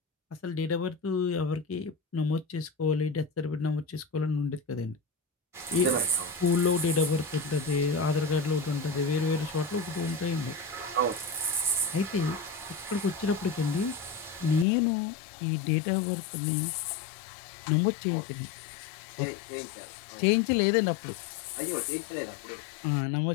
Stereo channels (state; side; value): drops out; right; at 14.7 s